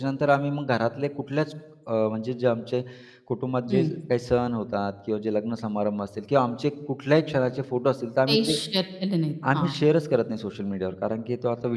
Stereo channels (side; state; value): both; identical; correlation 1.00